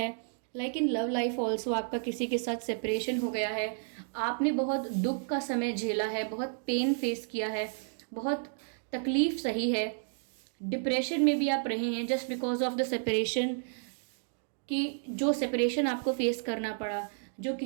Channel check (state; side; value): silent; left; digital silence